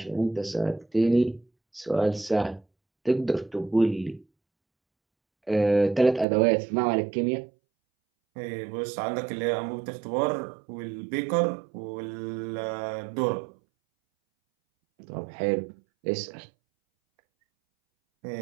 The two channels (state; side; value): drops out; left; at 6.2 s